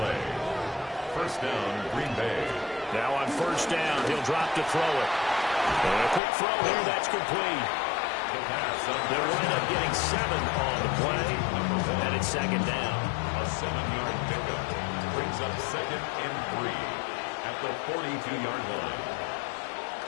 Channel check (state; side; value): drops out; right; at 6.2 s